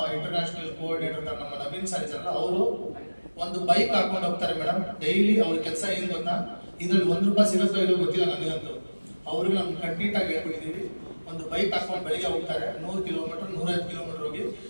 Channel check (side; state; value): both; inverted; correlation -1.00